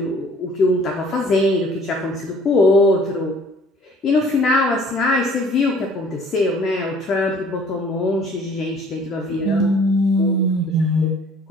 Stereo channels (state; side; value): normal; both; correlation 0.54